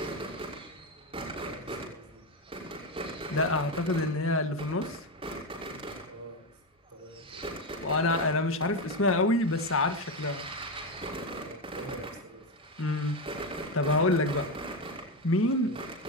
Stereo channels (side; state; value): both; normal; correlation 0.12